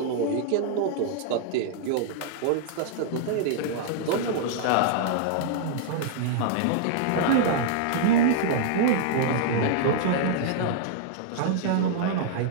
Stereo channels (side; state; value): both; different; correlation -0.01